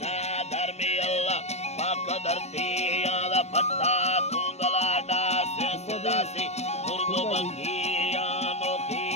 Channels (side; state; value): right; late; 0.32 ms